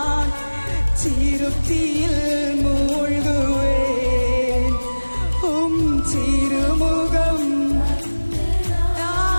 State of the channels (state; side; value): inverted; both; correlation -1.00